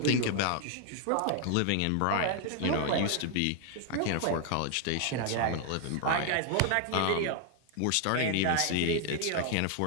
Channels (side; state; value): both; different; correlation 0.00